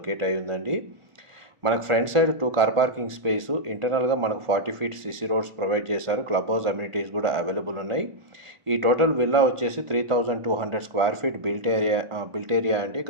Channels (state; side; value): late; left; 1.5 ms